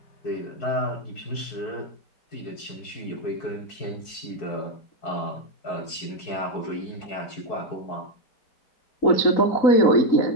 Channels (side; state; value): right; late; 4.6 ms